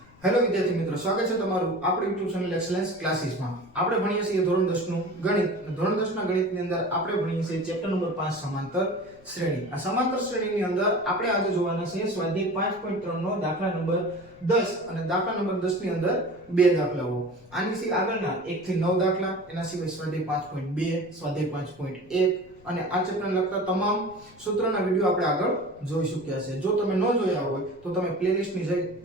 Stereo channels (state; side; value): noise; left; rumble, 26 dB below the sound